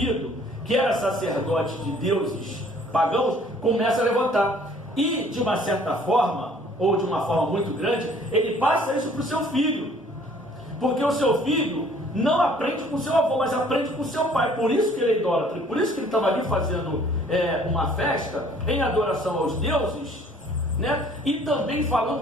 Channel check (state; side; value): normal; both; correlation 0.56